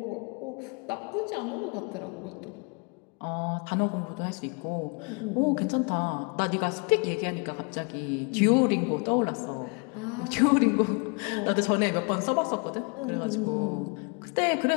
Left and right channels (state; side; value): quieter; right; 33.7 dB